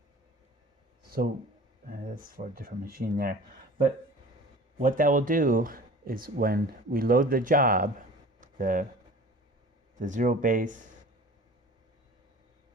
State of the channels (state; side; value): normal; both; correlation 0.42